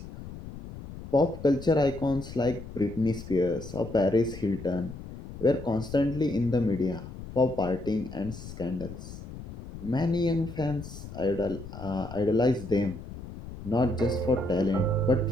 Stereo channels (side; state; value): left; noise; rumble, 12 dB below the sound